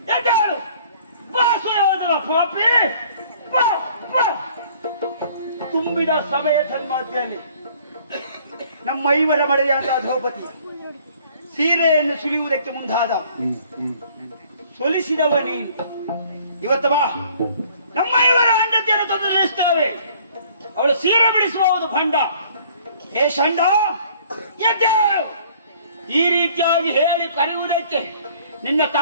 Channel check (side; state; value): both; inverted; correlation -0.56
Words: ಯಾಕೆ ಹೇಳು? ಬಾಸು ಯಾವುದಲ್ಲ ಪಾಪಿ. ತುಂಬಿದ ಸಭೆಯ ಸನ್ಮಾಧ್ಯದಲ್ಲಿ ನಮ್ಮ ಐವರ ಮಡೆಯಾದ ದ್ರೌಪದಿ ಸೀರೆಯನ್ನು ಸುಲಿಯುವುದಕ್ಕೆ ಮುಂದಾದ ಸೊಲಿಸಿದವ ನೀನು. ಇವತ್ತು ಬಾ, ನಮ್ಮ ಐವರ ಹೆಂಡತಿಯನ್ನು ತೊಂದರೆಸ್ತೇವೆ. ಅವಳು ಸೀರೆ ಬಿಡಿಸುವುದು ಭಂಡ. ಹೇ ಷಂಡ, ಎದ್ದೇಳು. ಈ ರೀತಿಯಾಗಿ ಹೇಳಿ ಕರೆಯುವುದಕ್ಕೆ ನಿನ್ನ